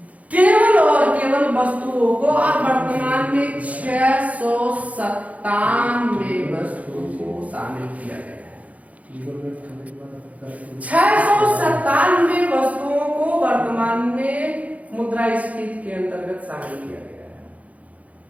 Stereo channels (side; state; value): left; late; 0.069 ms